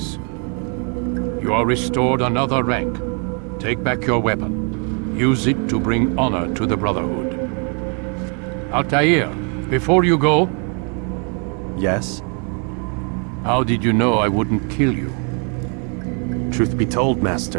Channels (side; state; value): left; quieter; 38.2 dB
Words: You are restored another rank. Take back your weapon. Use it to bring honor to the Brotherhood. Altair, before you go... Yes? How did you know I wouldn't kill you? Truth be told,